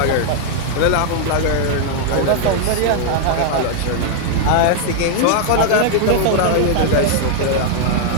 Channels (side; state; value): both; different; correlation 0.00